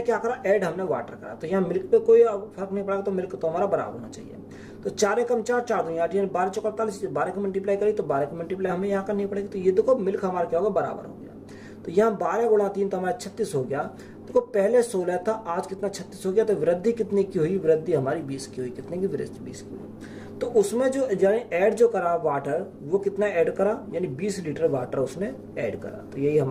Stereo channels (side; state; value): both; identical; correlation 1.00